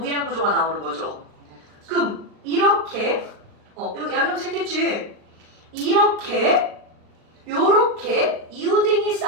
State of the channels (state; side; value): late; left; 38 ms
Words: 구조가 나오는 거죠. 그럼 이렇게 이거 양형 생겼지? 이렇게 요렇게 이웃등이